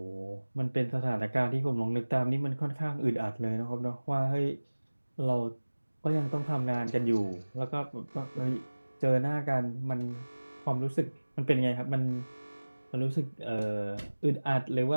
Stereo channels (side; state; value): both; inverted; correlation -1.00